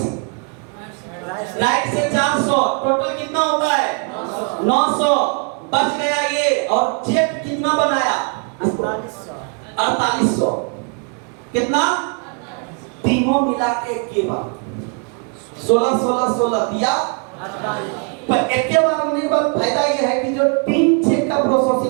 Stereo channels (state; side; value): quieter; left; 38.3 dB